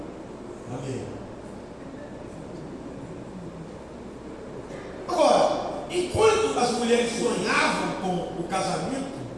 Amém. Agora, enquanto as mulheres sonhavam com o casamento,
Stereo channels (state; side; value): identical; both; correlation 1.00